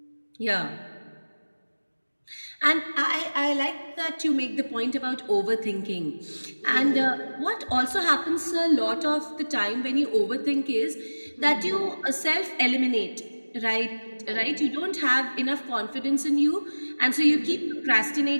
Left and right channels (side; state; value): both; inverted; correlation -1.00